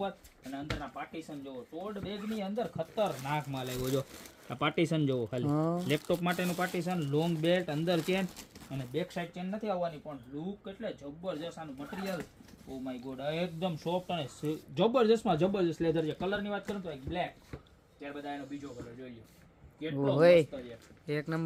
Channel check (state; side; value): identical; both; correlation 1.00